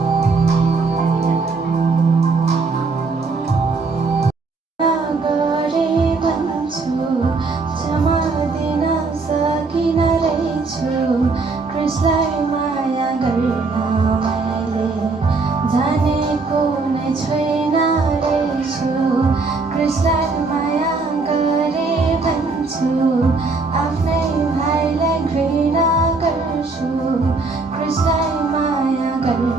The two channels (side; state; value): left; quieter; 4.0 dB